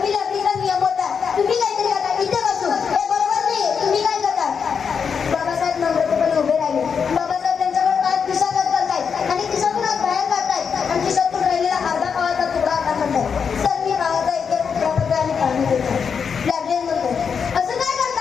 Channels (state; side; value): quieter; right; 6.4 dB